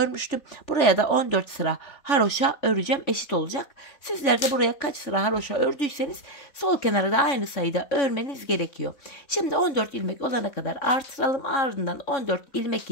Buraya da 14 sıra haroşa öreceğim. Eşit olacak. Sizler de buraya kaç sıra haroşa ördüyseniz sol kenara da aynı sayıda örmeniz gerekiyor. Şimdi 14 ilmek olana kadar artıralım. Ardından 14 ilmek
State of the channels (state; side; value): late; right; 3.5 ms